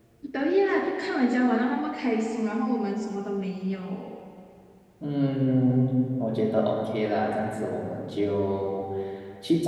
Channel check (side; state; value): both; identical; correlation 1.00